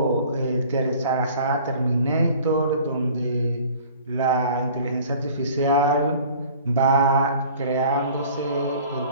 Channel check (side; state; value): both; inverted; correlation -0.48